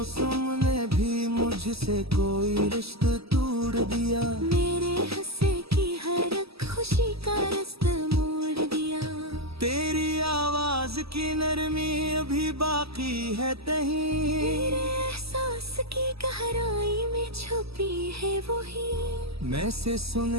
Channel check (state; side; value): late; left; 0.77 ms